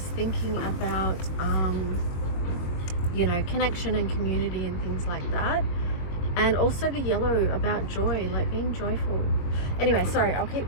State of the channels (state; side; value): late; right; 22 ms